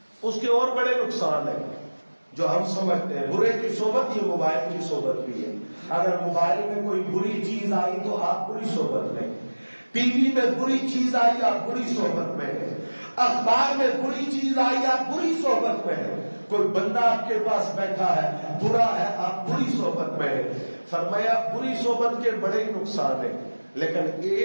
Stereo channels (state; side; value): inverted; both; correlation -1.00